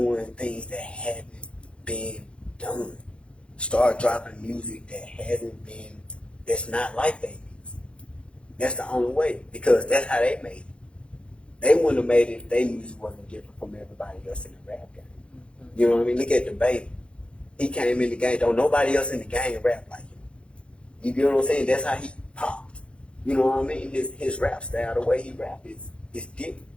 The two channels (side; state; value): right; late; 0.058 ms